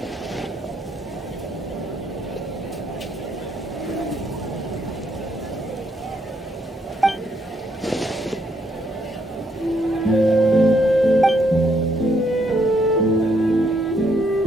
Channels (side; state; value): both; normal; correlation 0.73